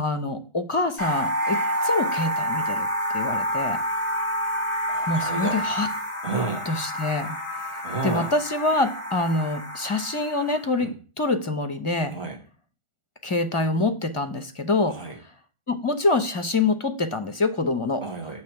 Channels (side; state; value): right; late; 1.4 ms